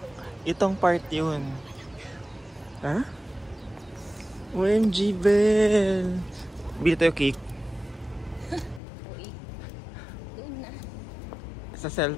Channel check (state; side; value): drops out; right; at 8.8 s